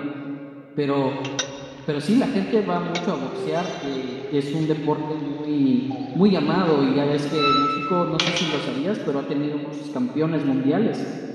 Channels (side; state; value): both; identical; correlation 1.00